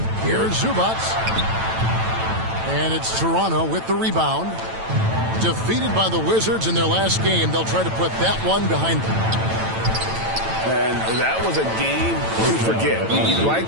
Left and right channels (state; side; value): late; left; 9.0 ms